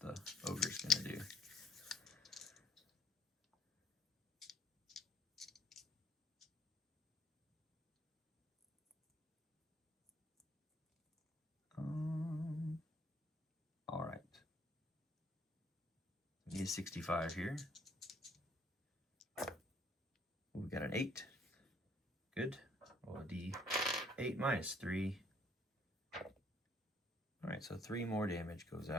ogre's gonna do. All right. We need 65 here. We got an 8. Good. Roll a D8 minus 3. All right, so 3 more damage goes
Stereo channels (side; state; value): both; normal; correlation 0.62